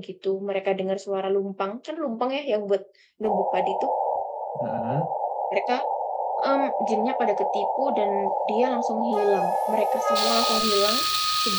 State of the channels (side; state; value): both; identical; correlation 1.00